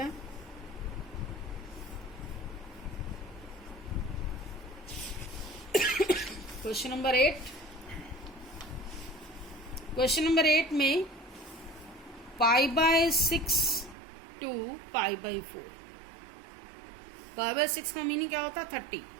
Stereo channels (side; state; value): left; drops out; at 14.0 s